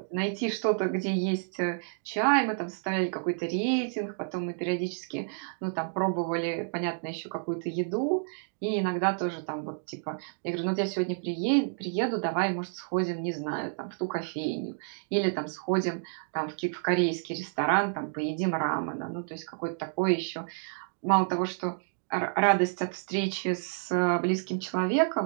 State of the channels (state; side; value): silent; left; digital silence